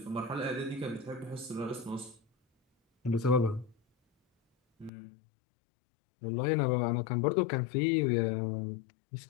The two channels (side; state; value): right; drops out; at 4.9 s